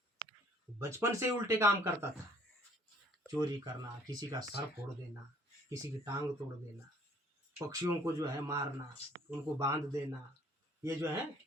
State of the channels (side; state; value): both; normal; correlation 0.58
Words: बचपन से उल्टे काम करता था। चोरी करना, किसी का सर फोड़ देना, किसी की टांग तोड़ देना, पक्षियों को जो है मारना, उनको बांध देना, ये जो है